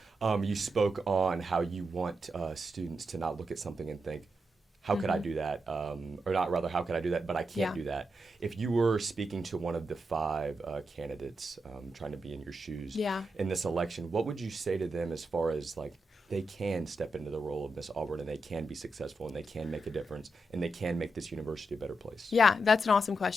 You spoke on how you want students to not look at something and think, how could I do that? Or not, rather, how could I do that, but I can't do that. If you were speaking to one of the 5 candidates trying to be in your shoes in this election, what would you say to them as far as like they can step into the role of Miss Auburn and they can be successful and they can make a difference and they can make this university a better place? Yeah, that's an awesome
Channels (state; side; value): normal; both; correlation 0.86